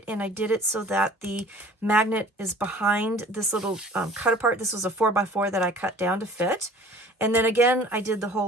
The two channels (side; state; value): both; normal; correlation 0.47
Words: and I did it so that the magnet is behind this little cut-apart. This was a 4x4 that I cut down to fit. And then again, I did the